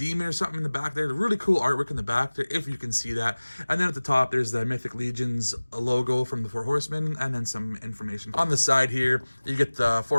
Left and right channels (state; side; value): inverted; both; correlation -1.00